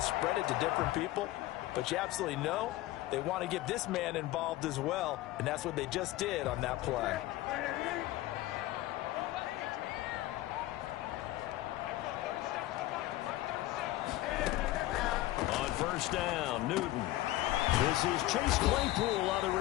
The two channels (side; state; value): right; quieter; 16.5 dB